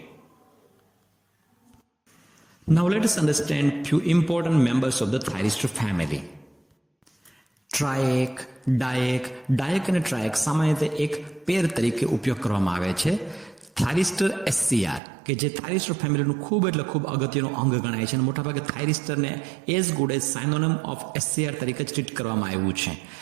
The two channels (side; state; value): left; drops out; at 15.0 s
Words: Now let us understand few important members of the thyristor family. ટ્રાયક, ડાયક અને ટ્રાયક સામાન્ય રીતે એક પેર તરીકે ઉપયોગ કરવામાં આવે છે. થાયરિસ્ટર એસસીઆર કે જે થાયરિસ્ટર ફેમિલીનું ખૂબ એટલે ખૂબ અગત્યનું અંગ ગણાય છે અને મોટાભાગે થાયરિસ્ટરને as good as synonym of SCR તરીકે ટ્રીટ કરવામાં આવ્યું છે.